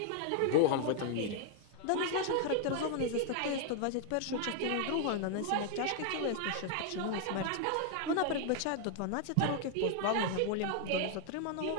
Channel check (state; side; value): different; both; correlation 0.00